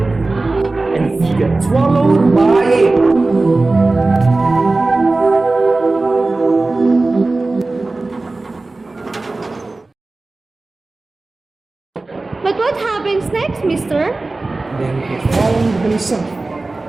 and he got swallowed by it. But what happens next, mister? Then he found himself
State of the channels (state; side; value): quieter; left; 3.3 dB